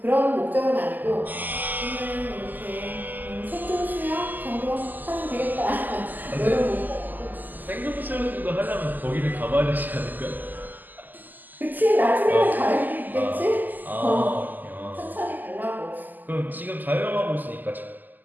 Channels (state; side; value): late; left; 0.085 ms